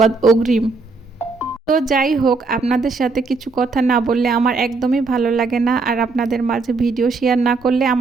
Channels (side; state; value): left; quieter; 4.0 dB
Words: অগ্রিম। তো যাই হোক, আপনাদের সাথে কিছু কথা না বললে আমার একদমই ভালো লাগে না, আর আপনাদের মাঝে ভিডিও শেয়ার না করলে